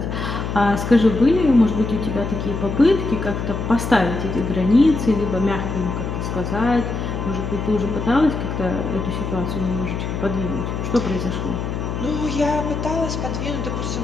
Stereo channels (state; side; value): noise; left; hum, 4 dB below the sound